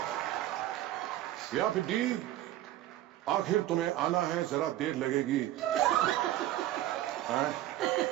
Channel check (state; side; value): quieter; left; 14.0 dB